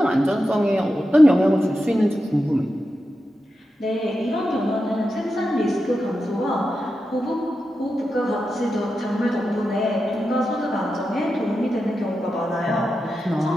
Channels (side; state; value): both; normal; correlation 0.90